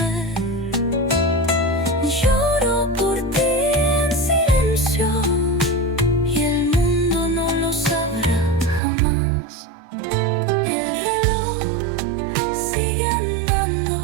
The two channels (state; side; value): drops out; left; at 8.8 s